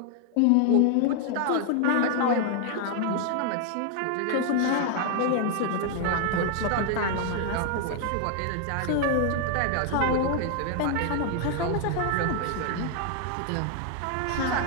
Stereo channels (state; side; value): different; both; correlation 0.00